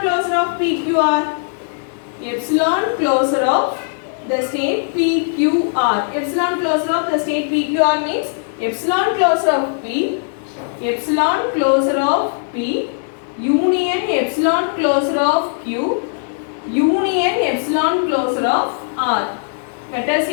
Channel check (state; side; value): silent; right; digital silence